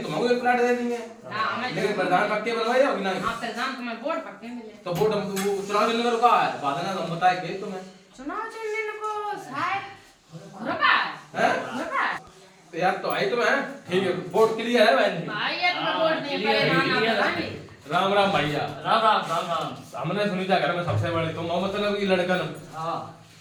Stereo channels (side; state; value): both; identical; correlation 1.00